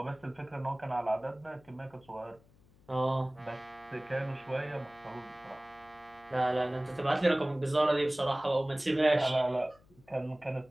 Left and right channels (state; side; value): noise; left; hum, 28 dB below the sound